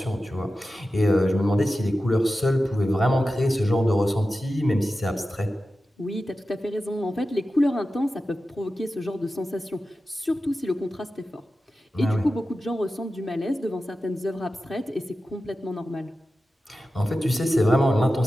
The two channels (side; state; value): both; normal; correlation 0.93